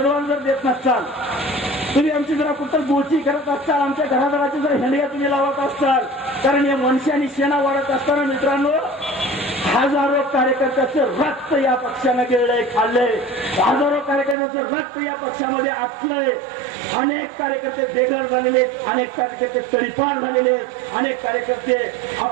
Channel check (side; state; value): left; drops out; at 14.4 s